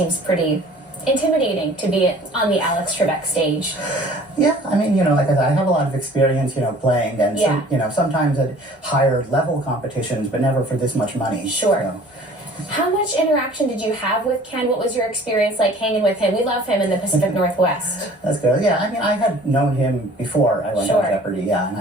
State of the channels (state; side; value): normal; both; correlation 0.50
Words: pretty intimidating to be on the Alex Trebek stage. Yeah, I mean, like I said, I have a lot of experience, playing and, sometimes at higher level competitions, but never for this much money. Sure. How much interaction did you have with Ken? What was your experience like hanging with him? We love him in the Pacific Northwest. That's good. Yeah, I mean, I had known him before I went on Jeopardy,